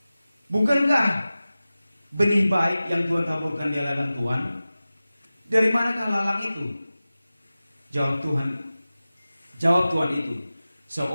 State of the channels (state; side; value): inverted; both; correlation -0.96